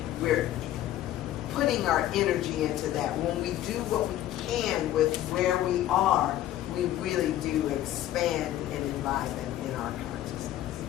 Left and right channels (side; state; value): right; quieter; 13.1 dB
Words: putting our energy into that. When we do what we can with where we are, we really do expand and enliven in our consciousness.